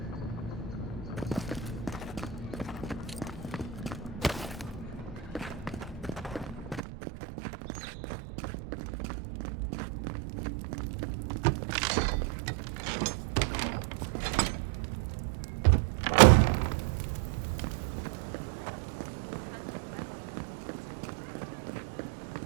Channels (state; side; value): drops out; left; at 6.8 s